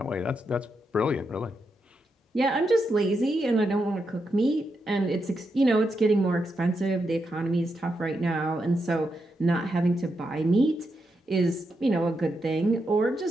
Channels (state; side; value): normal; both; correlation 0.84